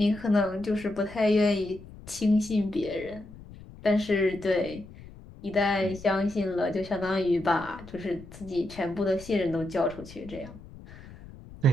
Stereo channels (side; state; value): left; noise; rumble, 18 dB below the sound